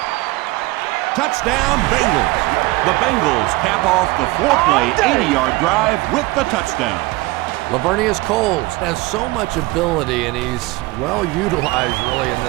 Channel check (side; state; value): left; quieter; 21.3 dB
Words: Touchdown, Bengals. The Bengals cap off the 4-play, 80-yard drive with the touchdown. Lavernius Coles has so much ability, and he's well utilized really in